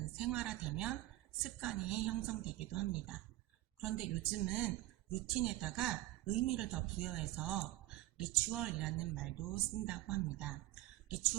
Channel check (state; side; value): quieter; left; 16.8 dB